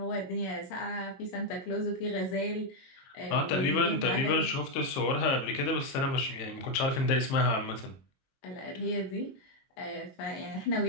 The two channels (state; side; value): late; right; 23 ms